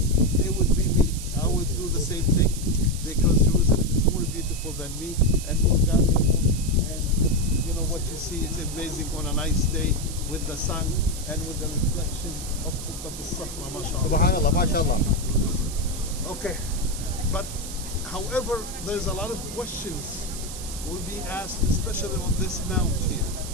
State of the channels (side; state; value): right; noise; hiss, 10 dB below the sound